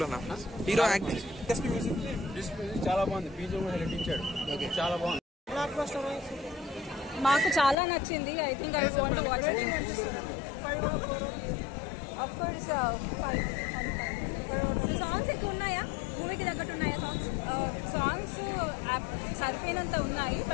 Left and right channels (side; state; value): right; drops out; at 7.8 s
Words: హీరో యాక్టింగ్ చాలా బాగుంది. బీజం కూడా నటించాడు. చాలా బాగుంది. మాకు చాలా నచ్చింది. I think I want to watch it. Of course 5. Songs ఎక్కువ ఉన్నాయా? మూవీకి తగ్గట్టు ఉన్నాయా సాంగ్స్? సాంగ్స్ సరిపోయినంత ఉన్నాయి,